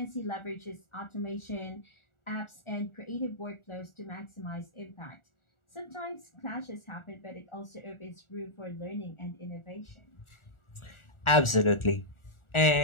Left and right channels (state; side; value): late; right; 1.4 ms